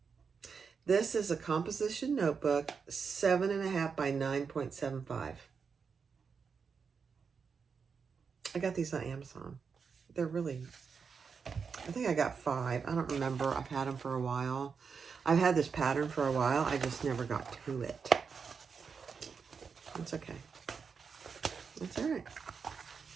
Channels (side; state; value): left; quieter; 5.8 dB